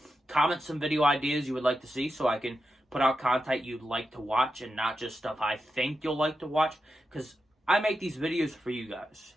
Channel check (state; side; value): normal; both; correlation 0.88